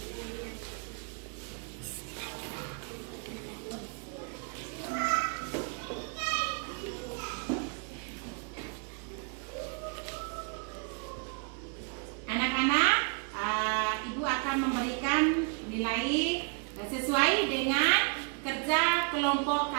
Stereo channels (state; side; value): quieter; left; 39.3 dB